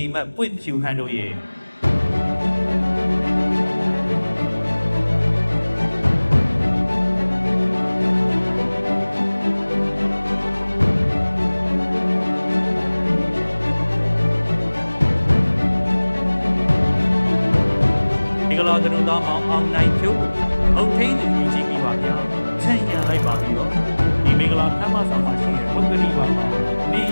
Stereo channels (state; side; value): inverted; both; correlation -1.00